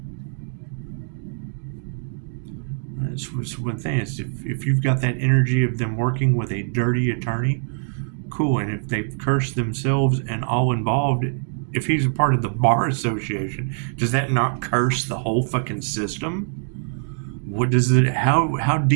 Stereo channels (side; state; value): left; silent; digital silence